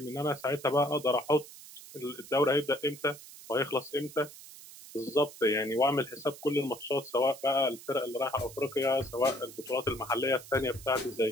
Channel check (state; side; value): noise; right; hiss, 17 dB below the sound